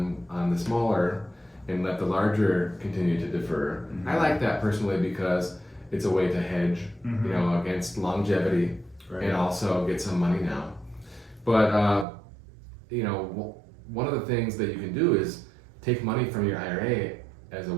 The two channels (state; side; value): drops out; left; at 12.1 s